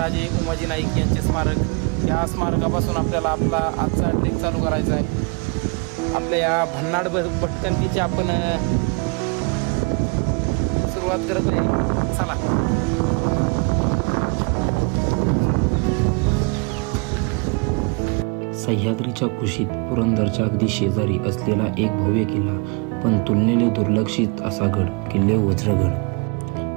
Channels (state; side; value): quieter; left; 32.5 dB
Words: उमाजी नाईक यांचे स्मारक। या स्मारकापासून आपल्याला आपला आजचा ट्रेक चालू करायचा आहे। आपल्या या भन्नाड भटकंतीची आपण सुरुवात करत आहे। चला। सह्याद्रीच्या कुशीत पुरंदरच्या अगदी शेजारी असलेला एक भव्य किल्ला, पण तुलनेने दुर्लक्षित असा गड, किल्ले